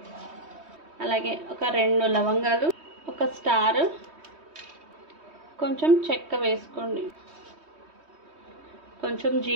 అలాగే ఒక 2 లవంగాలు, ఒక స్టార్, కొంచెం చెక్క వేసుకోండి, కొంచెం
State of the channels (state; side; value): late; left; 3.2 ms